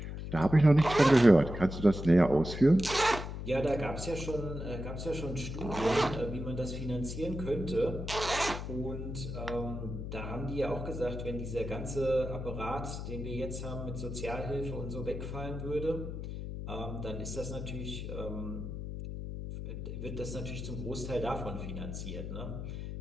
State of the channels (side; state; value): left; noise; hum, 6 dB below the sound